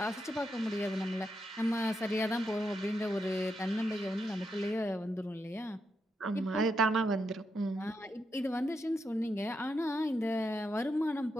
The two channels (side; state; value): both; normal; correlation 0.83